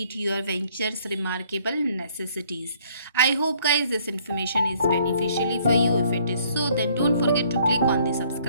your venture's remarkable necessities. I hope guys this information is beneficially for you. If it is so, then don't forget to click on the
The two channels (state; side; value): inverted; both; correlation -0.62